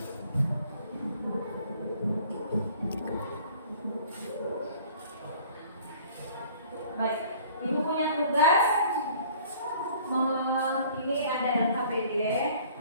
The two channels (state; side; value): inverted; both; correlation -0.52